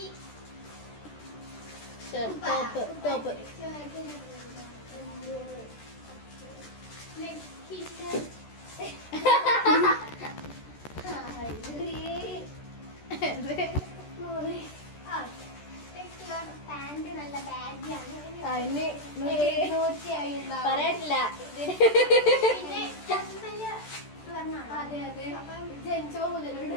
ടോപ്പ് പാന്റ് നല്ല ബാഗിയാണ്. പറയട്ടില്ല. പിന്നെ അതെ അതെ, ജനിച്ചോ മുതലുണ്ട്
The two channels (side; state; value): right; late; 14 ms